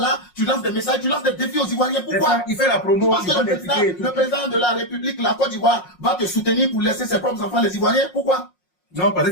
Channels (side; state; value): right; late; 5.5 ms